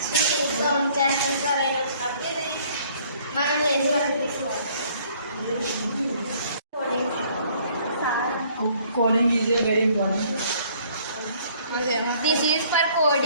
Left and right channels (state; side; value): inverted; both; correlation -0.60